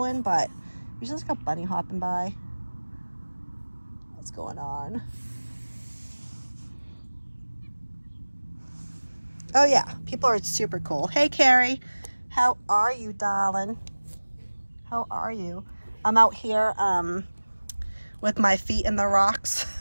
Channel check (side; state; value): both; inverted; correlation -1.00